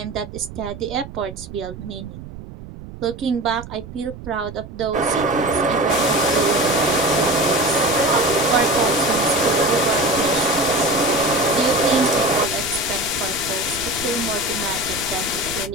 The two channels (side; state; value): right; noise; rumble, 14 dB below the sound